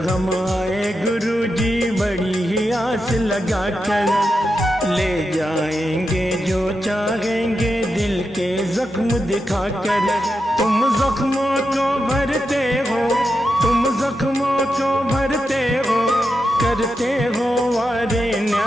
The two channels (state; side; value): normal; both; correlation 0.88